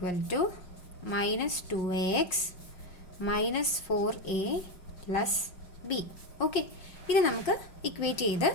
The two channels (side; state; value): right; late; 5.6 ms